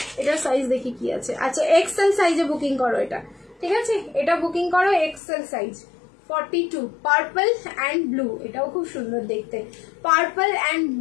এটার সাইজ দেখি কি আছে। আচ্ছা এক্সেল সাইজে বুকিং করো এটা, ঠিক আছে, এটা বুকিং করো XL size 42, purple and blue. এটাও খুব সুন্দর দেখতে, পার্পল অ্যান্ড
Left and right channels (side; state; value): right; drops out; at 5.2 s